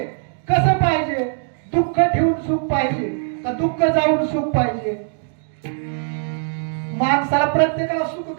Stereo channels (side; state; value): left; silent; digital silence